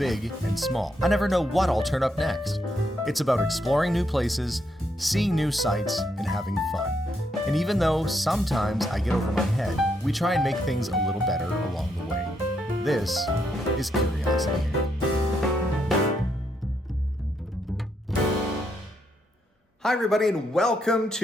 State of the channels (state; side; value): normal; both; correlation 0.77